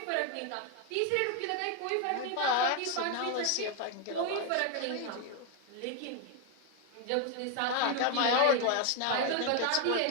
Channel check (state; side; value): different; both; correlation 0.01